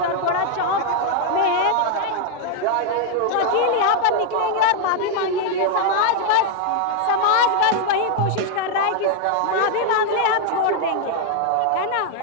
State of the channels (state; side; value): different; both; correlation 0.00